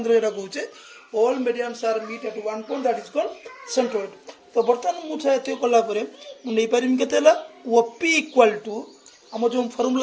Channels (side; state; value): both; identical; correlation 1.00